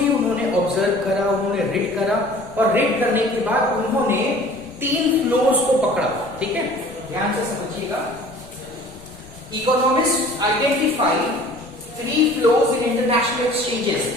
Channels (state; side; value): noise; left; rumble, 21 dB below the sound